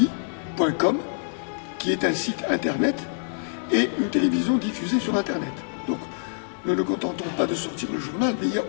qui est un site internet et une télévision diffusée sur internet. Donc nous ne nous contentons pas de sortir le journal, mais il y a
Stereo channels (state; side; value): silent; right; 61 dB below the other